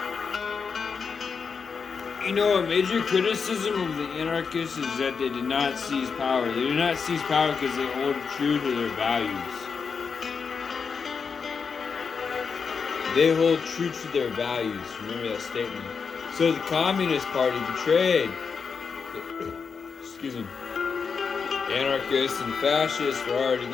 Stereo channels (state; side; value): quieter; right; 5.7 dB